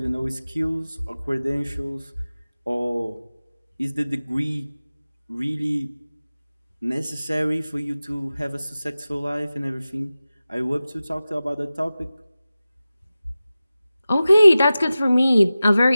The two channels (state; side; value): inverted; both; correlation -0.96